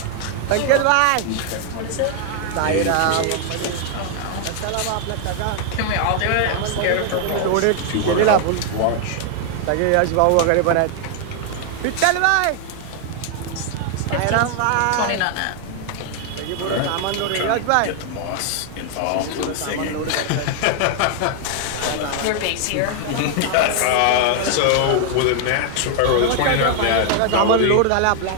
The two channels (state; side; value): different; both; correlation 0.00